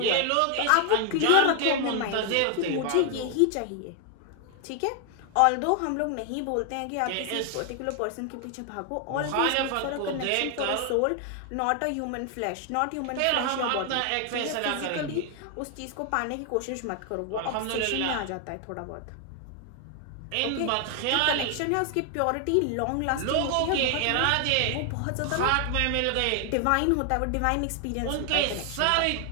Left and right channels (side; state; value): both; different; correlation 0.00